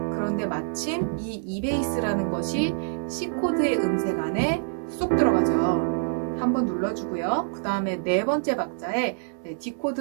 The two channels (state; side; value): silent; left; digital silence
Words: 그런데 마침 이 E베이스라는 것이 C코드의 음색 안에 쏙 들어가죠. 한번 눌러주고요. 그 다음에 네 번째 박자에